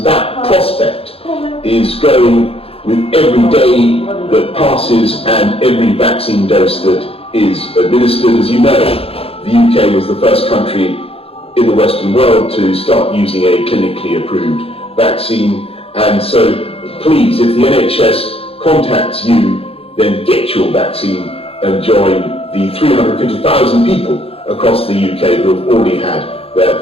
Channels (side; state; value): right; late; 0.28 ms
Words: that prospect is growing with every day that passes and every vaccine dose that is administered. As you know, the UK was the first country in the Western world to start using a clinically approved vaccine. And so please, if the NHS contacts you, then get your vaccine and join the 350,000 people across the UK who have already had their